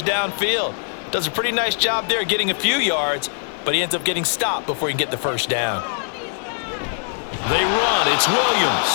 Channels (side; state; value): right; silent; digital silence